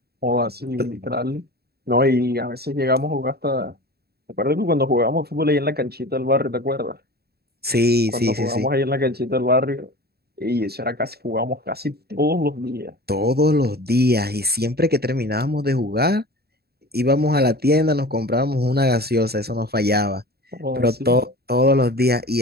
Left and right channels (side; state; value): left; late; 0.46 ms